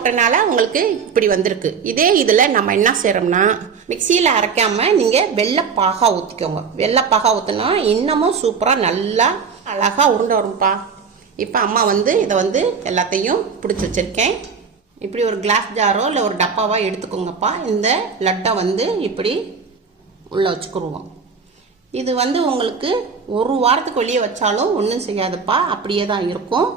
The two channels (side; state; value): left; quieter; 5.8 dB